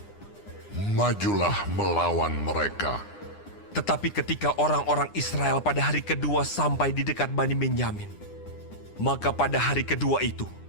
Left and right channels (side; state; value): right; late; 9.8 ms